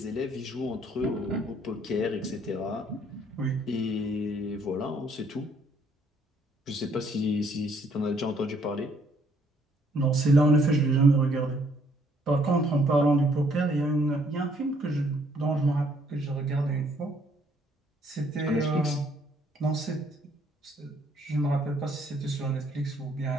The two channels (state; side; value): normal; both; correlation 0.65